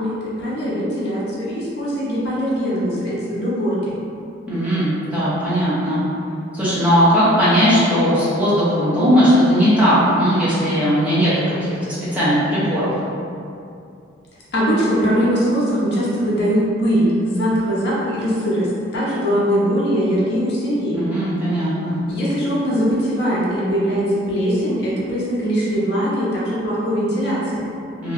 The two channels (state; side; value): normal; both; correlation 0.55